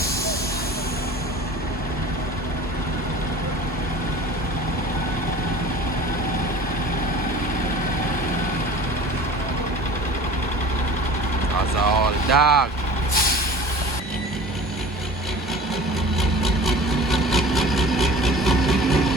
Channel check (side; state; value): both; normal; correlation 0.41